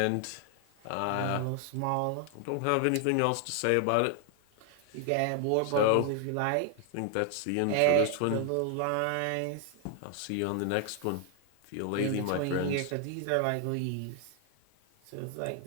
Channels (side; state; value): both; different; correlation 0.00